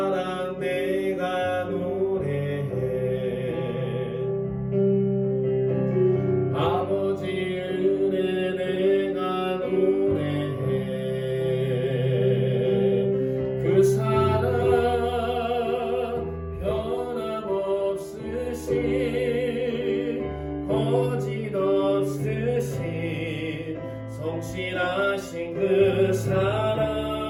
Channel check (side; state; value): both; identical; correlation 1.00